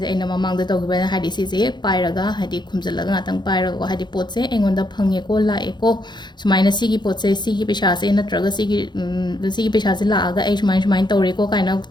je aina mamang da tawgiba haidi si se pairaga haidi khumjalaga ngatang pairaga ko haidi pot se engonda phange ko la eko sumaina sigi pot se sigi pesha se natraga sigi pesha se la aga ai sumain tawre ko kaina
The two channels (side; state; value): right; late; 0.21 ms